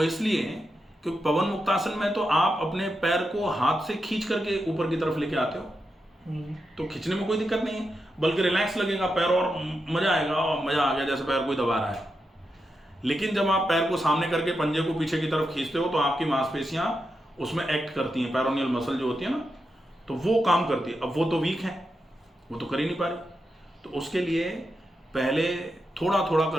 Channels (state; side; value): normal; both; correlation 0.87